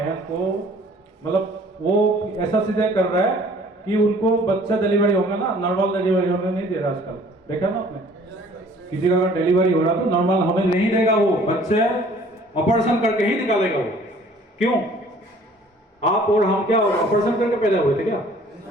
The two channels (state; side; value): normal; both; correlation 0.54